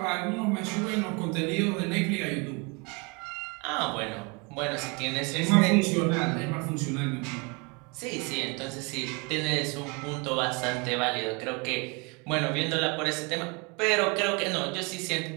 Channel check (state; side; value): quieter; left; 30.3 dB